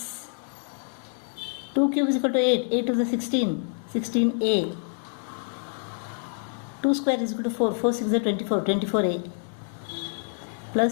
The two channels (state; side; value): silent; right; 60 dB below the other